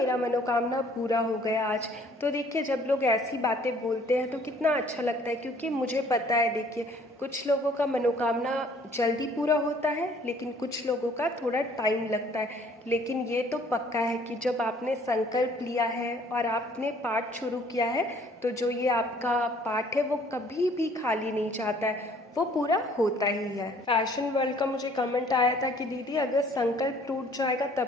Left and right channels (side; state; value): both; normal; correlation 0.57